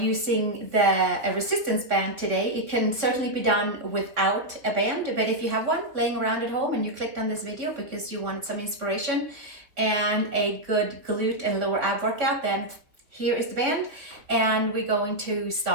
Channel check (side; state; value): left; late; 3.4 ms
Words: a resistance band today. It can certainly be done without a band, but if you have one laying around at home and you clicked on this video because you wanted some inspiration and a good glute and lower ab workout, then here is the band. And we're going to